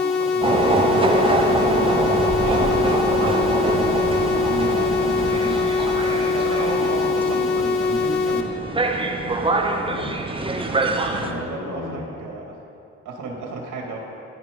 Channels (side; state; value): both; normal; correlation 0.43